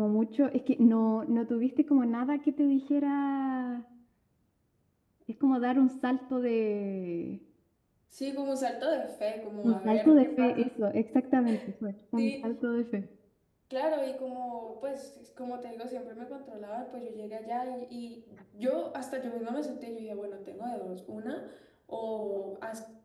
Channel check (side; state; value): both; identical; correlation 1.00